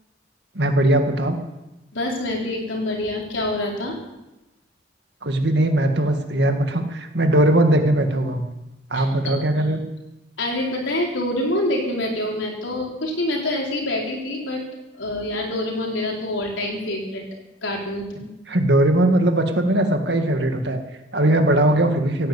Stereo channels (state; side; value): normal; both; correlation 0.46